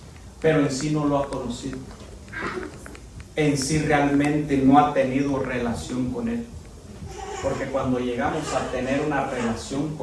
pero en sí no lo ha conocido. En sí realmente no ha tenido relación con Él. Porque cuando llegamos a tener una relación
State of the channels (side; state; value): both; identical; correlation 1.00